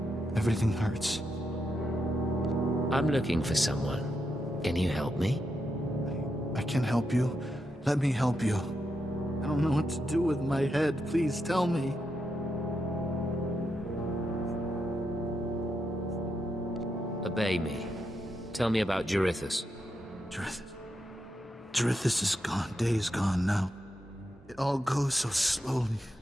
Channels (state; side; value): normal; both; correlation 0.84